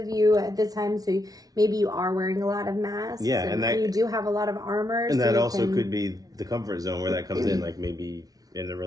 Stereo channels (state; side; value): late; left; 0.18 ms